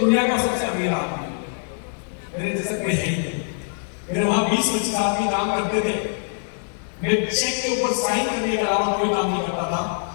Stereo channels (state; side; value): silent; right; digital silence